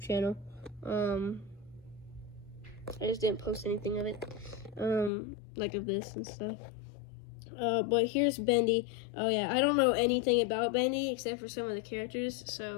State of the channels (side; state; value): right; drops out; at 5.1 s